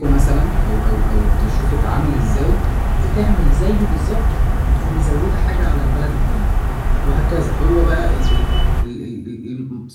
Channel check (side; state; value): both; identical; correlation 1.00